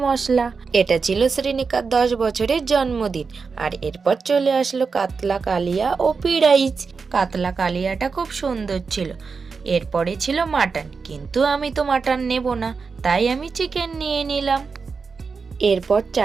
মশলা। এটা ছিল শ্রীনিকার 10 বছরের জন্মদিন। আর এরপর চলে আসলো কাতলা কালিয়া ও পিঁড়াইচ। কাতলা কালিয়াটা খুব সুন্দর ছিল। এরপরে ছিল মাটন, কিন্তু আমি তো মাটন নেব না, তাই আমি চিকেন নিয়ে নিলাম। এরপর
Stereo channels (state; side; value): quieter; left; 5.0 dB